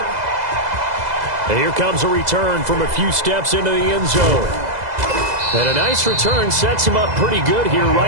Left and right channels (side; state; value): left; late; 2.0 ms